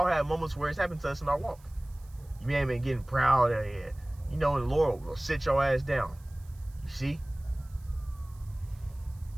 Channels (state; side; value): noise; right; hiss, 28 dB below the sound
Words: have moments where it's happened to us in our walk. You may have been getting proud, and the Lord will sit your ass down. You see?